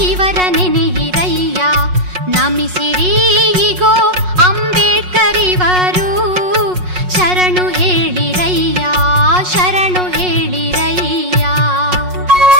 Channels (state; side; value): late; left; 5.5 ms